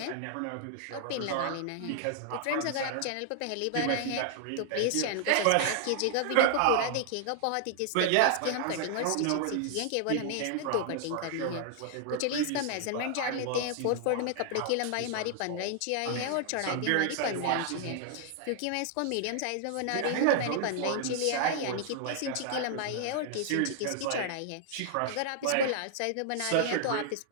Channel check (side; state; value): both; different; correlation 0.00